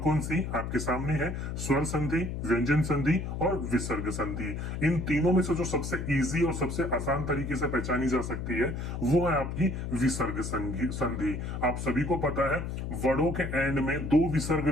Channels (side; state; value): left; noise; hum, 4 dB below the sound